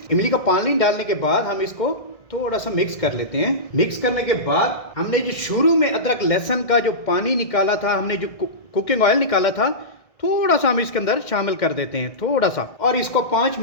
इमली का पानी डालने के बाद हम इसको थोड़ा सा मिक्स कर लेते हैं। मिक्स करने के बाद हमने जो शुरू में अदरक लहसुन का जो पानी निकाला था, हमने जो कुकिंग ऑयल निकाला था, थोड़ा सा हम इसके अंदर शामिल कर देते हैं, थोड़ा सा। और इसको 5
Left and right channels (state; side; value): late; right; 1.6 ms